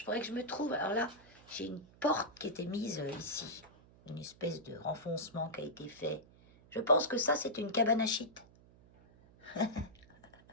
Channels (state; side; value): noise; right; hum, 25 dB below the sound